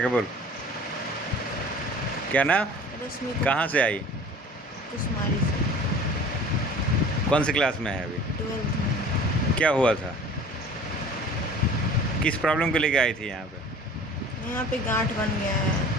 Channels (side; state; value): both; normal; correlation 0.44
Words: के बोल। क्या नाम? रश्मि कहाँ से आई? कुमारी से। कौन सी क्लास में है अभी? 12th में। क्या हुआ था? किस प्रॉब्लम को लेके आई थी यहाँ पे? यहाँ पे गांठ बन गया